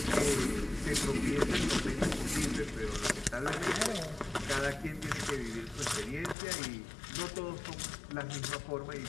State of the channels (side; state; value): right; drops out; at 6.4 s